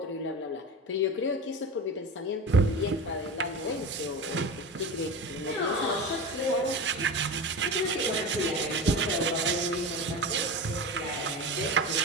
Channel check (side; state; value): both; normal; correlation 0.27